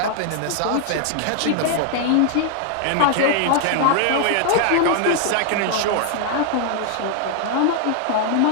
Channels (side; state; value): both; different; correlation 0.00